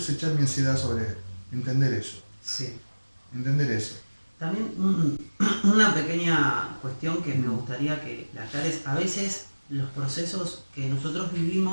echar mi ansiedad sobre Él. Entender eso. Sí. Entender eso. También una pequeña cuestión que me gustaría que la aclares. A veces los procesos que nosotros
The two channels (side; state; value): both; inverted; correlation -1.00